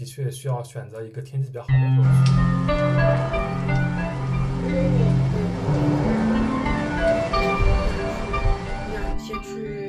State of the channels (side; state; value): both; identical; correlation 1.00